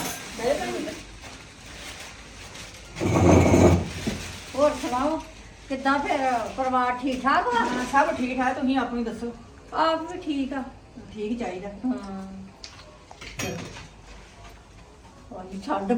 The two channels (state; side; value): identical; both; correlation 1.00